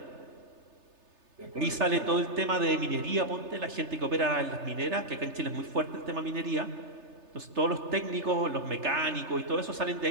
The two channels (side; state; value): left; late; 3.3 ms